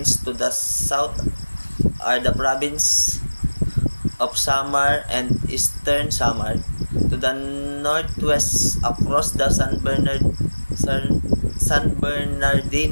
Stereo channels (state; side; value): inverted; both; correlation -1.00